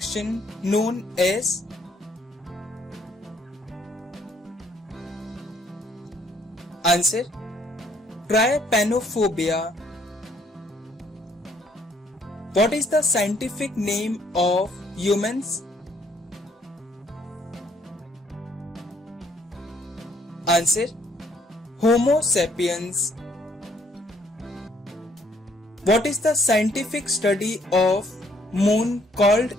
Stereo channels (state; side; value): normal; both; correlation 0.66